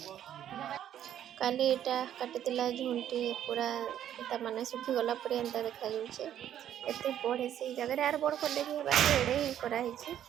काली एटा काटिला झुंटी पूरा एटा माने सुखी गला पूरा एंता देखा जाउछे एते बड़ से जगह यार बड़ कर देबी बाकी एडे ही करा हिची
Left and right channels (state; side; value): quieter; left; 10.7 dB